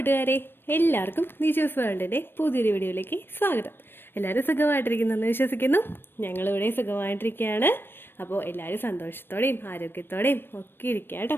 കൂട്ടുകാരെ, എല്ലാവർക്കും നിജോസ് വേൾഡിൻ്റെ പുതിയൊരു വീഡിയോയിലേക്ക് സ്വാഗതം. എല്ലാവരും സുഖമായിട്ടിരിക്കുന്നെന്ന് വിശ്വസിക്കുന്നു. ഞങ്ങളിവിടെ സുഖമായിട്ടിരിക്കുകയാണ്. അപ്പോൾ എല്ലാവരും സന്തോഷത്തോടെയും ആരോഗ്യത്തോടെയും ഒക്കെ ഇരിക്കുക കേട്ടോ.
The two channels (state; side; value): late; right; 0.10 ms